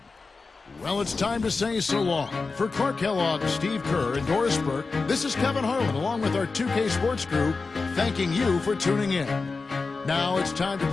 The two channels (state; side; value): quieter; right; 4.2 dB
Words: Well, it's time to say so long. For Clark Kellogg, Steve Kerr, and Doris Burke, this is Kevin Harlan along with our 2K Sports crew, thanking you for tuning in. Now it's time to